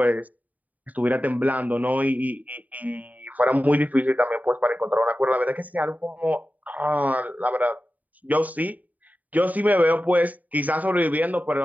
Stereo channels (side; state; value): left; late; 0.075 ms